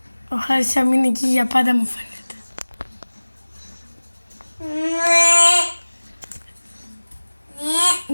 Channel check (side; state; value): both; inverted; correlation -1.00